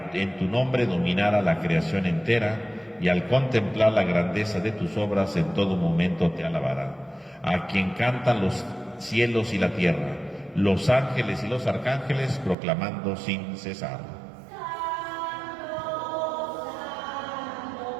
en tu nombre dominara la creación entera, y al contemplar la grandeza de tus obras en todo momento te alabará. A quien cantan los cielos y la tierra, los ángeles y los arcángeles, proclamando sin cesar.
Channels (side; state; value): left; drops out; at 12.6 s